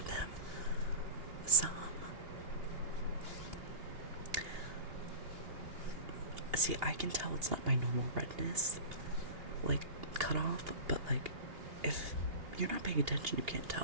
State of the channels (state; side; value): late; left; 2.8 ms